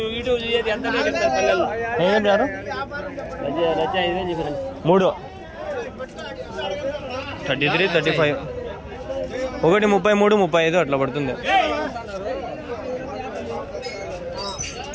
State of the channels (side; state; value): both; identical; correlation 1.00